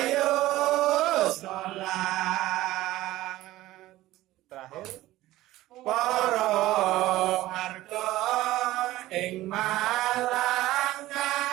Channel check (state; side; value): quieter; left; 16.4 dB